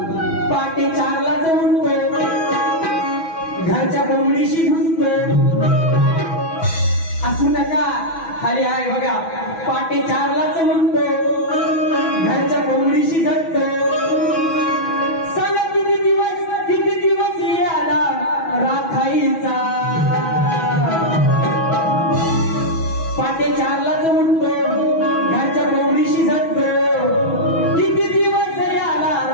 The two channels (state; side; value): late; right; 6.1 ms